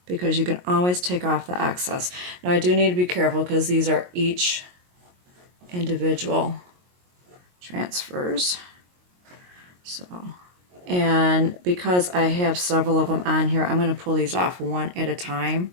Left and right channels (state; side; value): late; left; 22 ms